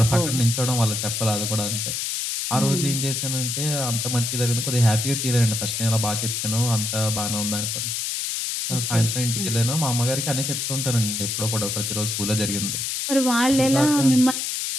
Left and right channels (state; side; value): noise; left; hiss, 2 dB below the sound